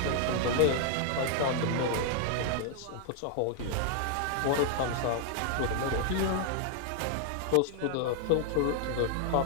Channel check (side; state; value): both; different; correlation 0.00